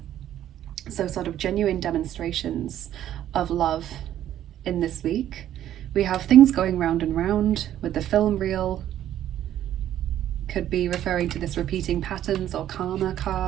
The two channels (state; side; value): quieter; left; 11.7 dB